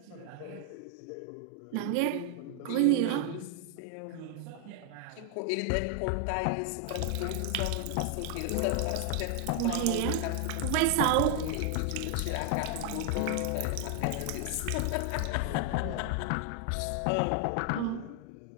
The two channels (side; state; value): both; different; correlation 0.00